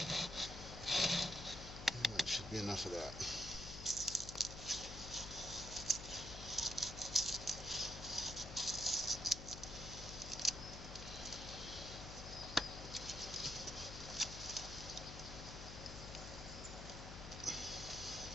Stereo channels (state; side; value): noise; left; hum, 9 dB below the sound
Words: That should be enough of that.